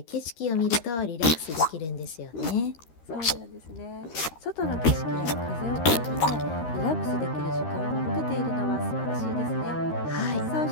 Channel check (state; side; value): late; right; 13 ms